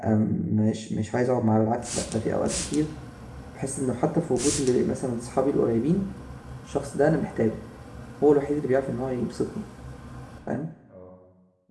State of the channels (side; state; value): both; identical; correlation 1.00